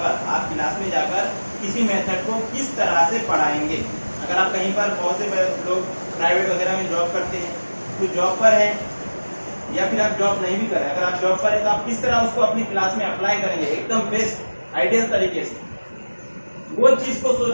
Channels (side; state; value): both; inverted; correlation -1.00